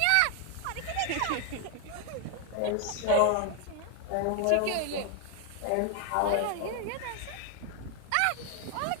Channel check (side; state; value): both; different; correlation 0.00